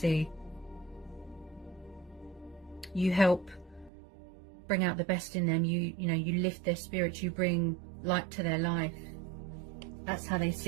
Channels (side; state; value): left; drops out; at 3.9 s